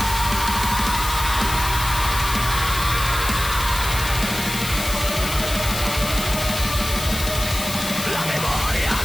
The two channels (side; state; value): left; noise; hiss, 6 dB below the sound